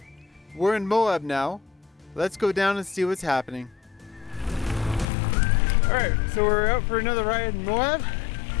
We're in Moab now. Let's go down and see what's happening. All right, so we're out for another ride in Moab.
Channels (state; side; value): drops out; right; at 5.1 s